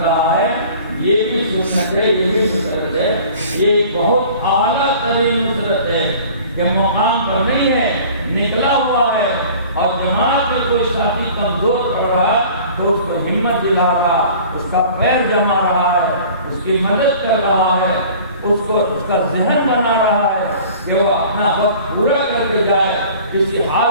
رہا ہے، یہ بھی سنت ہے، یہ بھی نصرت ہے۔ یہ بہت اعلیٰ ترین نصرت ہے کہ مقام پر نہیں ہے، نکلا ہوا ہے اور جماعت میں کوئی ساتھی کمزور پڑ رہا ہے تو اس کو ہمت دلا رہا، اس کا پیر جما رہا ہے، اس کی مدد کر رہا ہے، اس کا ذہن بنا رہا ہے کہ وہ اپنا وقت پورا کر کے جائے، کسی حال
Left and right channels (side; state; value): both; inverted; correlation -0.46